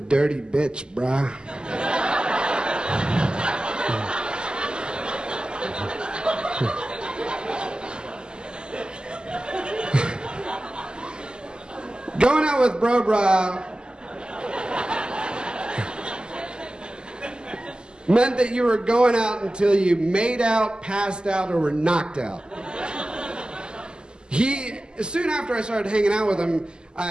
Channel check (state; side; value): late; left; 0.047 ms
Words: bitch, brah." Going out with Bro Bra meant that you were going out until you made out, passed out, or were knocked out. Soon after I started hanging out with him,